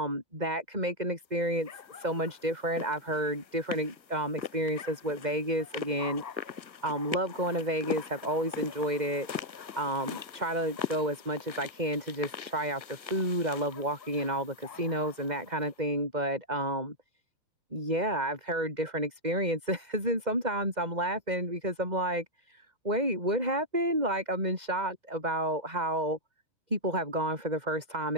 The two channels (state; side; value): late; left; 1.5 ms